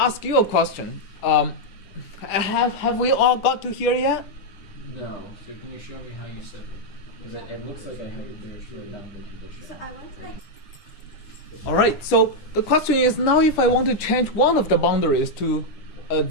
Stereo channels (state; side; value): late; right; 9.9 ms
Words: you a question. Have we all got to here yet? No. So can you show me how you set it? Because it looks like I have a very boundary condition. So I want to like. All right. So the question is now if I want to change one of the boundaries to a